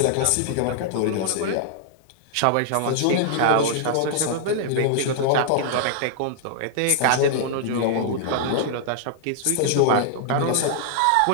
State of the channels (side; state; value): both; different; correlation -0.01